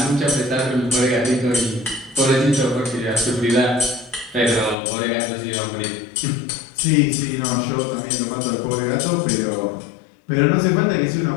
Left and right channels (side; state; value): right; drops out; at 4.8 s